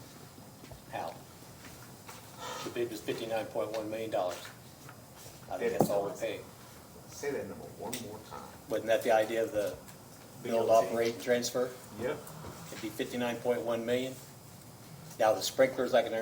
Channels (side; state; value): both; identical; correlation 1.00